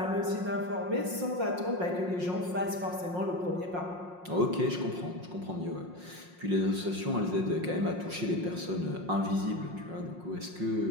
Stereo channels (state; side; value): late; left; 5.6 ms